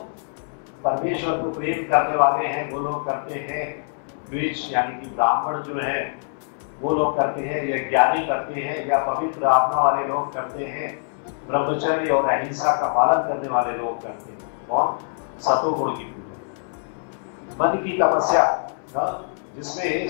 परमेश्वर को प्रेम करने वाले हैं वो लोग करते हैं, द्विज यानी कि ब्राह्मण जो है वो लोग करते हैं, या ज्ञानी करते हैं, या पवित्र आत्मा वाले लोग करते हैं, ब्रह्मचर्य और अहिंसा का पालन करने वाले लोग करते हैं। और सतोगुण की पूजा, मन की तपस्या जिसमें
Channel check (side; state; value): right; silent; 62 dB below the other